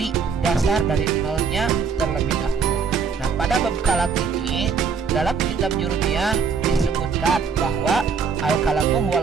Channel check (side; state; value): left; quieter; 5.7 dB